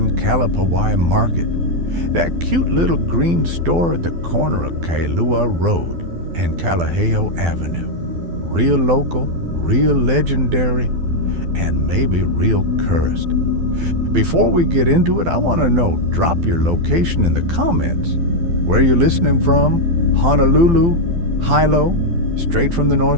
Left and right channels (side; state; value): left; late; 12 ms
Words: Kalapawai Market. That cute little green store at the corner of Kailua Rd and Kalaheo Avenue. Real local, real legendary, and maybe real cursed. Before we get into it, I want to know, drop your location in the comments. Where you're listening from? Honolulu, Hilo, straight from the